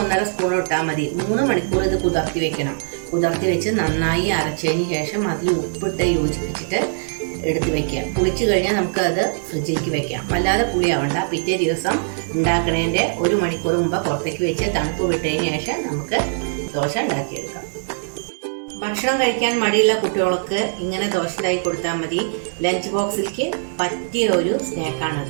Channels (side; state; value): left; silent; digital silence